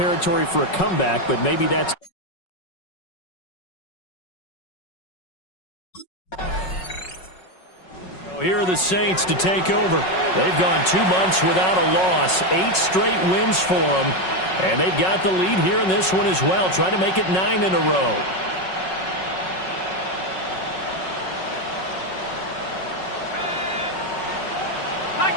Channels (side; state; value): right; late; 5.4 ms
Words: for a comeback, but maybe that's... Here are the Saints to take over. They've gone 2 months without a loss, 8 straight wins for them, and they've got the lead here in this one as well, trying to make it 9 in a row.